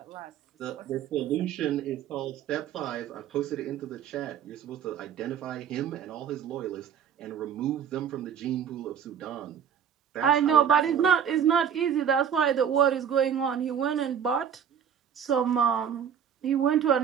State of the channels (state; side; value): quieter; left; 8.3 dB